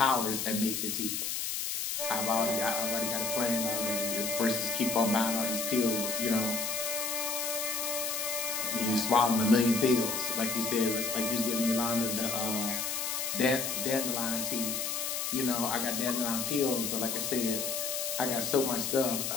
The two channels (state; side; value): noise; left; hiss, 2 dB below the sound